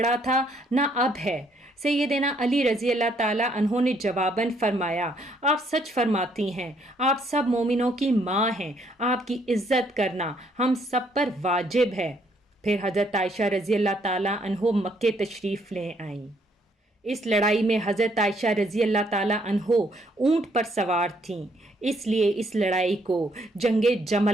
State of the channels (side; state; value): both; normal; correlation 0.69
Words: تھا نہ اب ہے۔ سیدنا علی رضی اللہ تعالیٰ عنہ نے جواباً فرمایا، آپ سچ فرماتی ہیں، آپ سب مومنوں کی ماں ہیں، آپ کی عزت کرنا ہم سب پر واجب ہے۔ پھر حضرت عائشہ رضی اللہ تعالیٰ عنہ مکے تشریف لے آئیں۔ اس لڑائی میں حضرت عائشہ رضی اللہ تعالیٰ عنہ اونٹ پر سوار تھیں، اس لیے اس لڑائی کو جنگ